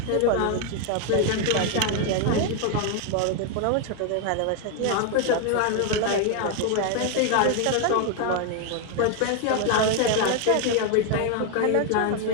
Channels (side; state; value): both; different; correlation 0.01